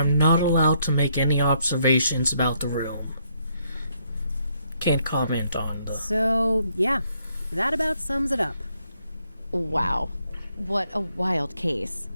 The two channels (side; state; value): both; inverted; correlation -0.73